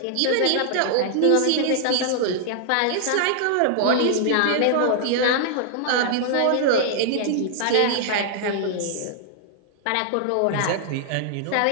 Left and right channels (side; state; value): both; different; correlation -0.01